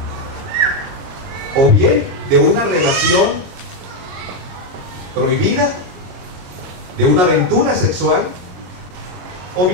o bien de una relación prohibida, de una aventura sexual, o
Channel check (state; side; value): late; left; 22 ms